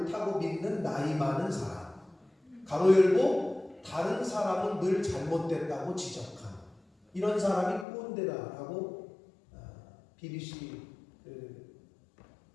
믿는 나이 많은 사람, 가로 열고 다른 사람은 늘 잘못됐다고 지적한 이런 사람이 꼰대다라고 BBC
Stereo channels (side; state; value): right; drops out; at 7.9 s